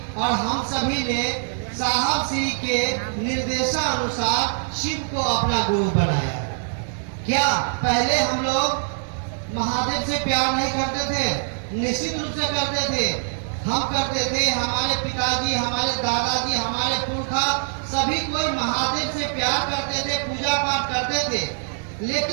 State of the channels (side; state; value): left; silent; 63 dB below the other